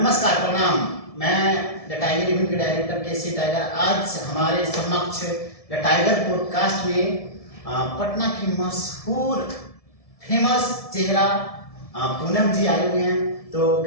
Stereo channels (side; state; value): right; late; 1.7 ms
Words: प्रणाम। मैं द टाइगर इवेंट के डायरेक्टर केसी टाइगर। आज हमारे समक्ष द टाइगर पॉडकास्ट में पटना की मशहूर फेमस चेहरा पूनम जी आए हुए हैं। तो